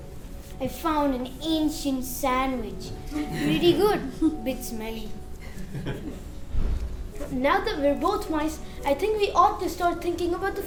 I found an ancient sandwich. Pretty good, bit smelly. Now that we're both mice, I think we ought to start thinking about the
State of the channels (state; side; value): identical; both; correlation 1.00